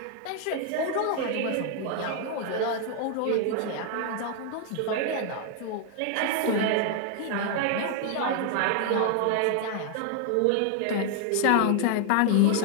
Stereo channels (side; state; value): both; different; correlation 0.00